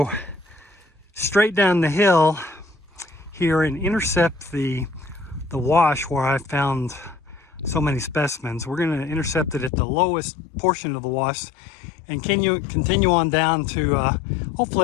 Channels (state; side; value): drops out; right; at 9.7 s